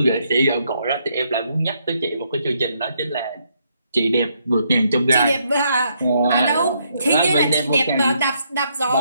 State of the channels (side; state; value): both; inverted; correlation -0.74